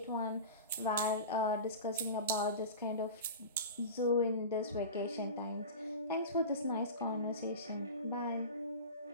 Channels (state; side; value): inverted; both; correlation -0.31